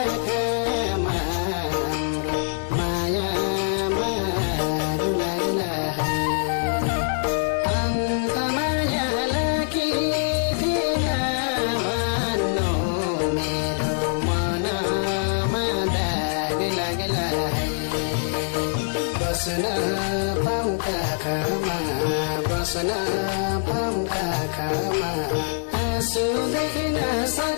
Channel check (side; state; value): right; silent; digital silence